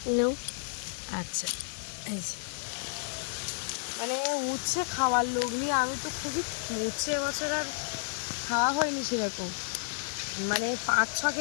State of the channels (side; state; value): right; silent; digital silence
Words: নাও আচ্ছা এই যে মানে উচ্ছে খাওয়ার লোক নিয়ে আমি তো খুবই উচ্ছে এবছর আর খাওয়া হয়নি সেরকম মানে 5-6